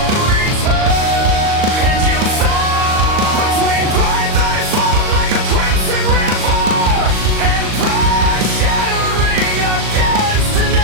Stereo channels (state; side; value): late; left; 38 ms